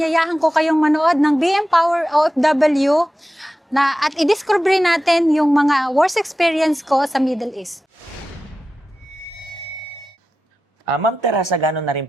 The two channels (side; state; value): both; normal; correlation 0.93